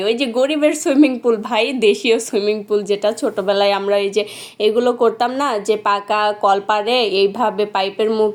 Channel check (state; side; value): identical; both; correlation 1.00